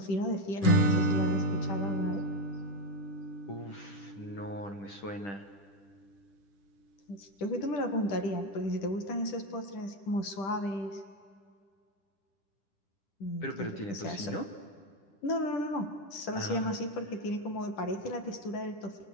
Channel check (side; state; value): right; late; 10 ms